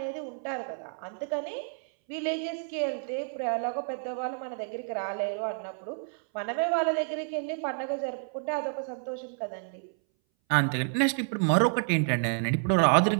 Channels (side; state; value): left; silent; 58 dB below the other